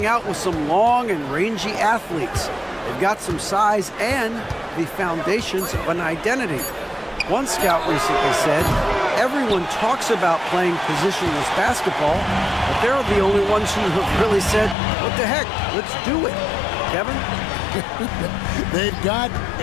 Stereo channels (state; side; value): drops out; right; at 14.8 s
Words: out with some long and rangy athletes. They've got some size and the foundations of an identity. One scout recently said, everyone talks about playing positionless basketball, but they're the only ones who have really said, what the heck, let's do it. Kevin? They've got